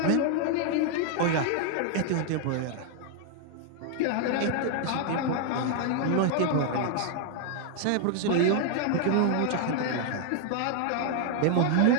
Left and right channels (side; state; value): both; different; correlation 0.00